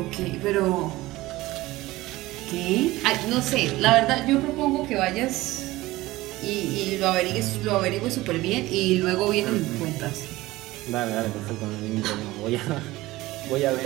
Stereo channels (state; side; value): quieter; left; 18.5 dB